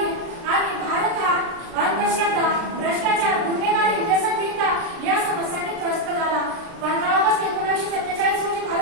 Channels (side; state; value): left; late; 36 ms